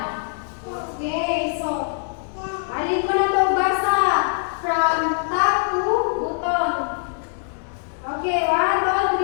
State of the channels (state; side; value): silent; right; digital silence